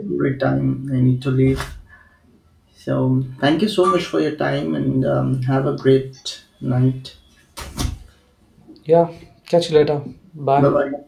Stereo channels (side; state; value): both; identical; correlation 1.00